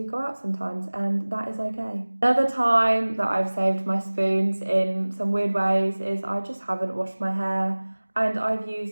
go out sometimes, and that is okay. Another time that I've saved my spoons in some weird ways is I just haven't washed my hair, and I've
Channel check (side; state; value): both; inverted; correlation -1.00